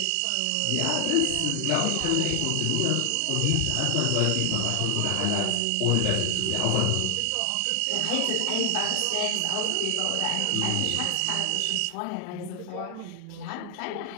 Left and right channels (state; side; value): different; both; correlation 0.00